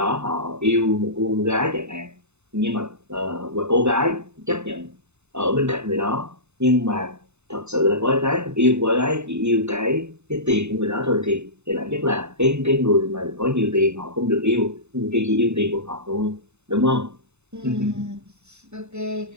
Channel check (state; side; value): late; left; 0.82 ms